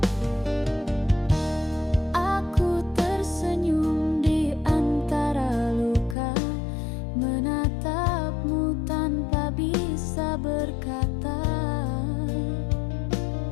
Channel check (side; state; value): right; drops out; at 6.2 s